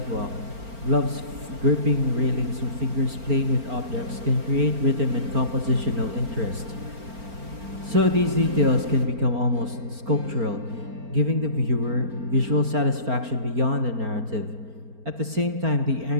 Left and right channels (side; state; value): left; late; 4.4 ms